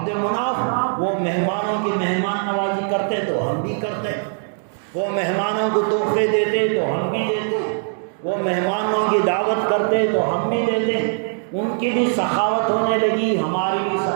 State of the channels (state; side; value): silent; left; digital silence